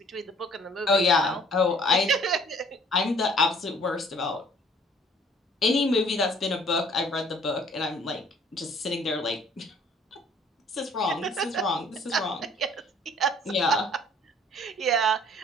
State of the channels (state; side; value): normal; both; correlation 0.56